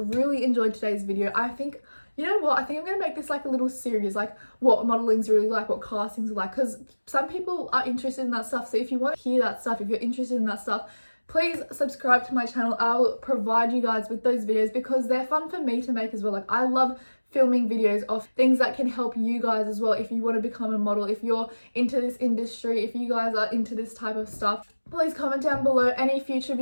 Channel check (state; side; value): inverted; both; correlation -1.00